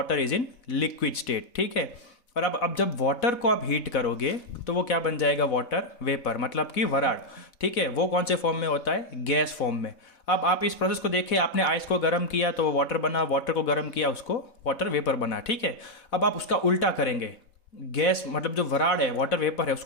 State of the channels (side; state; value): right; late; 4.1 ms